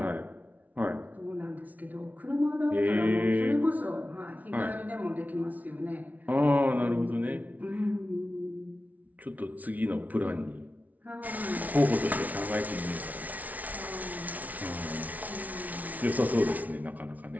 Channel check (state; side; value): late; left; 0.074 ms